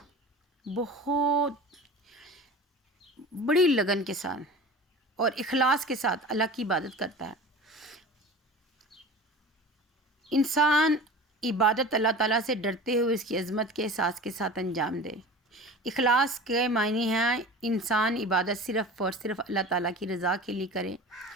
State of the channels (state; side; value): normal; both; correlation 0.36